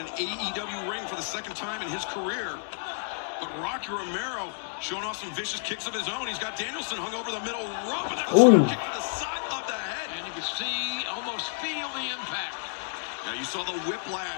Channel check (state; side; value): silent; right; digital silence